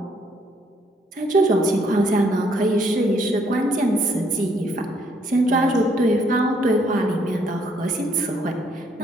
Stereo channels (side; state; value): both; normal; correlation 0.68